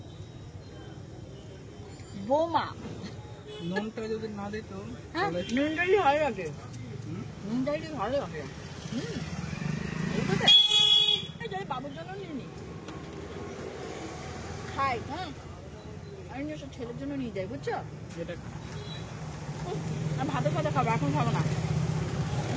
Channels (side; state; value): both; identical; correlation 1.00